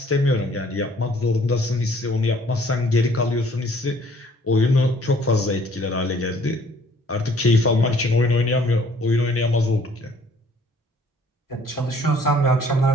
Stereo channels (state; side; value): normal; both; correlation 0.58